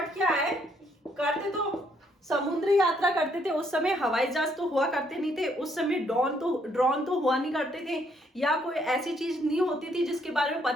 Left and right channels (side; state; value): both; normal; correlation 0.70